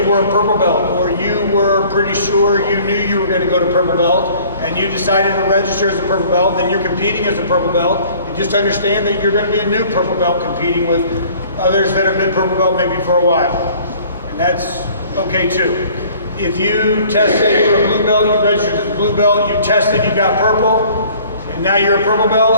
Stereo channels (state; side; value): inverted; both; correlation -0.53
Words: were a purple belt, or you were pretty sure you knew you were going to go to purple belt, and you decided to register as a purple belt, then you're competing as a purple belt. And just understand that you're going to be a new purple belt competing with others that have been purple belt maybe for a while. And that's okay too. If you tested, you were a blue belt, you registered as a blue belt, you tested, you got purple, and now you're a purple